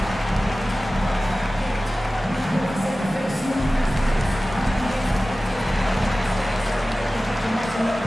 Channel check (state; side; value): normal; both; correlation 0.96